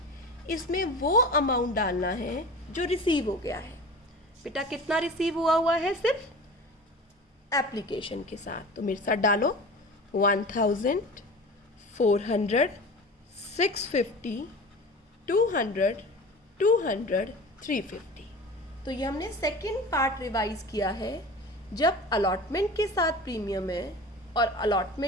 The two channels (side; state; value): both; normal; correlation 0.36